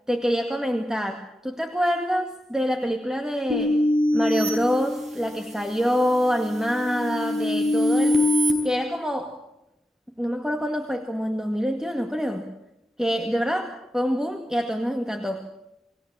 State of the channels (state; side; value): normal; both; correlation 0.90